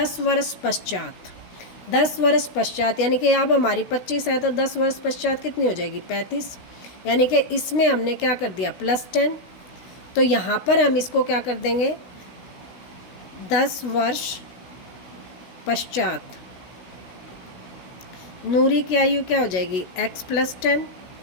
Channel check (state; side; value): late; right; 16 ms